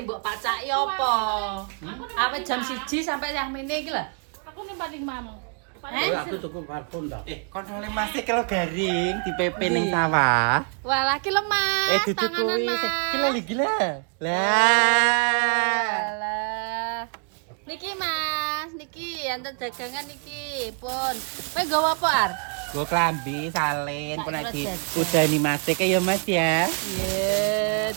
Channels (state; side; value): quieter; left; 37.7 dB